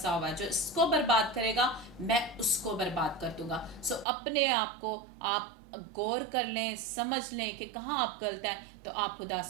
हुआ है, जो इसको बर्बाद करेगा मैं उसको बर्बाद कर दूंगा। सो अपने आप को आप गौर कर लें, समझ लें कि कहाँ आप गलत हैं, तो आप खुदा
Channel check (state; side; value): drops out; left; at 4.0 s